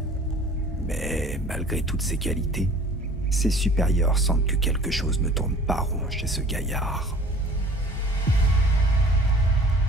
Mais malgré toutes ses qualités, ses supérieurs sentent que quelque chose ne tourne pas rond chez ce gaillard.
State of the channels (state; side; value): normal; both; correlation 0.48